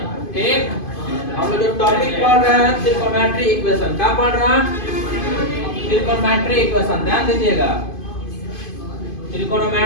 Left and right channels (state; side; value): late; right; 2.5 ms